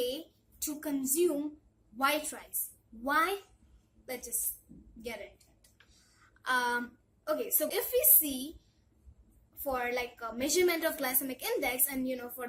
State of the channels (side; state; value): both; identical; correlation 1.00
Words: to consume white rice. Why? Let's just get into it. Okay, so if we see for like a measurement of glycemic index and for